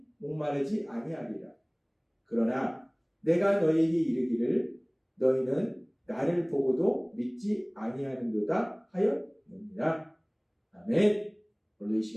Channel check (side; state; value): both; identical; correlation 1.00